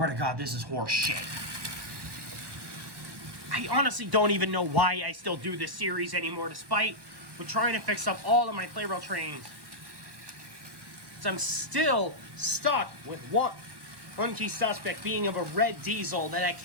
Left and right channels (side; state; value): left; late; 1.1 ms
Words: to god, this is horse shit. I honestly don't even know why I still do this series anymore, despite with trying to fix up all of my Plarail trains. So I'm still stuck with one key suspect being of a red diesel that I